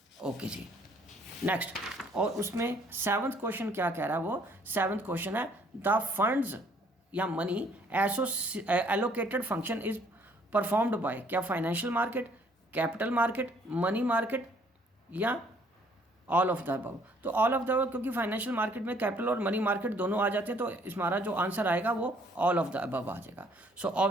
ओके जी नेक्स्ट। और उसमें सेवंथ क्वेश्चन क्या कह रहा है, वो सेवंथ क्वेश्चन है द फंड्स या money allocated function is performed by, क्या financial market, capital market, money market, या ऑल ऑफ द अबव। तो ऑल ऑफ द अबव, क्योंकि फाइनेंशियल मार्केट में कैपिटल और मनी मार्केट दोनों आ जाते हैं, तो हमारा जो आंसर आएगा वो ऑल ऑफ द अबव आ जाएगा। So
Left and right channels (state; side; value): normal; both; correlation 0.62